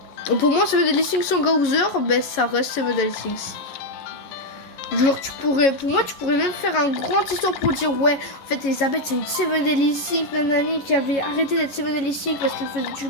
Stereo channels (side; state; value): right; late; 11 ms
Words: Pour moi, Seven Deadly Sins sans Gaouzer, ben ça reste Seven Deadly Sins. Genre, pour moi, tu pourrais même faire un grand histoire pour dire ouais, en fait, Elisabeth, c'est une Seven Deadly Sins, nanani, qui avait arrêté d'être Seven Deadly Sins parce qu'elle faisait du